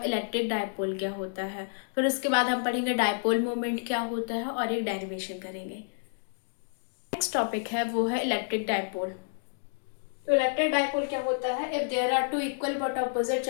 इलेक्ट्रिक डायपोल क्या होता है। फिर उसके बाद हम पढ़ेंगे डायपोल मोमेंट क्या होता है और एक डेरिवेशन करेंगे। नेक्स्ट टॉपिक है वो है इलेक्ट्रिक डायपोल। तो इलेक्ट्रिक डायपोल क्या होता है? If there are two equal but opposite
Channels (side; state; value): right; silent; digital silence